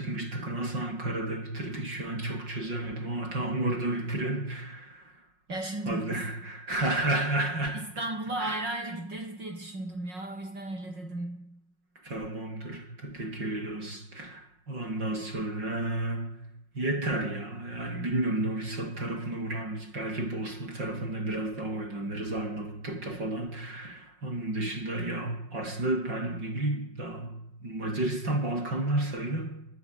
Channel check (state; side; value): late; left; 5.5 ms